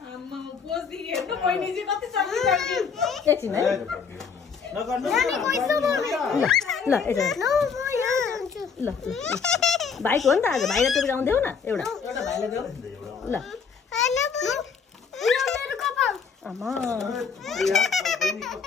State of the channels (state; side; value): quieter; right; 6.0 dB